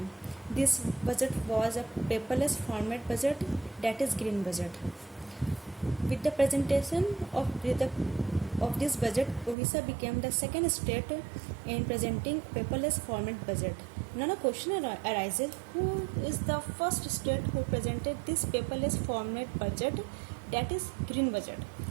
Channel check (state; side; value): drops out; left; at 9.6 s